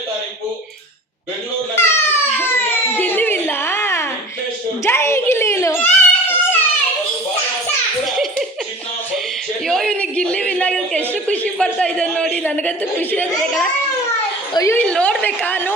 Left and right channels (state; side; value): normal; both; correlation 0.40